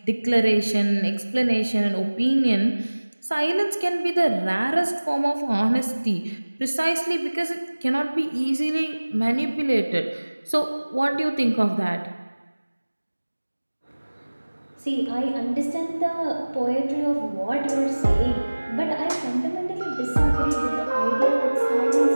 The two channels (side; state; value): both; inverted; correlation -1.00